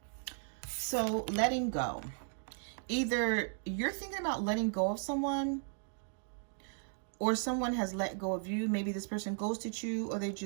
So letting go. Either you're thinking about letting go of someone, or someone has let go of you. Maybe this person ghosted you, or they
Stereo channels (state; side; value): silent; left; 54 dB below the other